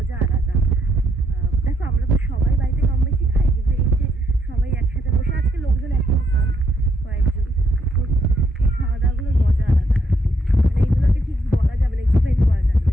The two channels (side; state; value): both; normal; correlation 0.74